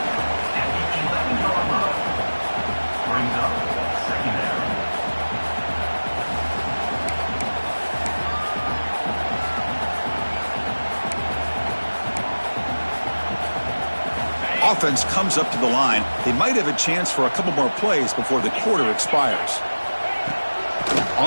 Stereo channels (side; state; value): both; inverted; correlation -1.00